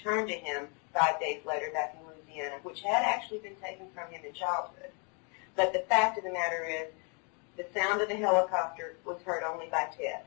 to him 5 days later back in Louisiana, which had actually been taken from him in childhood. But the fact of the matter is, the sound of the helicopter was heard only by Ted.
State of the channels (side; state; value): right; quieter; 36.7 dB